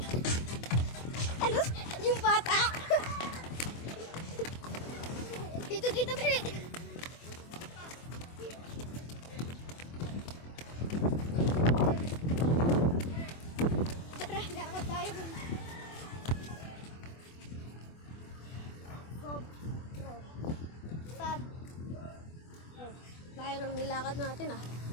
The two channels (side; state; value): right; late; 24 ms